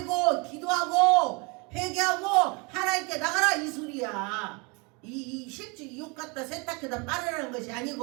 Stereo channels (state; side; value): quieter; left; 30.1 dB